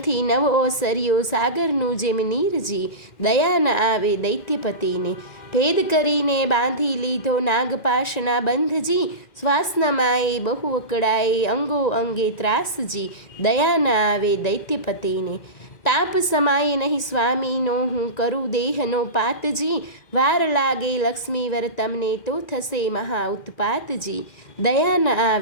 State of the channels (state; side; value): late; right; 1.9 ms